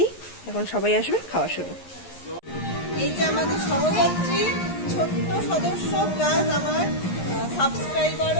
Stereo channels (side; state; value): right; late; 11 ms